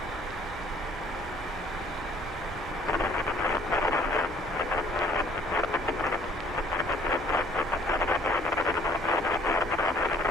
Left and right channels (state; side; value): normal; both; correlation 0.58